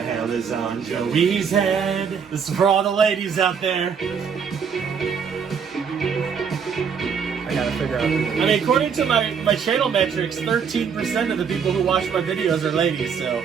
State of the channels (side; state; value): left; quieter; 6.6 dB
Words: is on Joey's head? This is for all the ladies out there. I gotta figure out. I mean, according to my channel metrics, 13% of the people who watch my videos are ladies, so